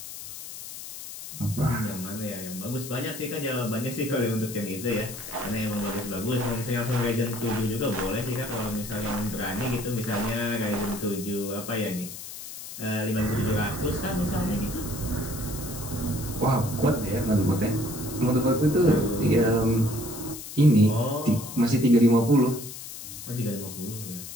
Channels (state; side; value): noise; left; hiss, 11 dB below the sound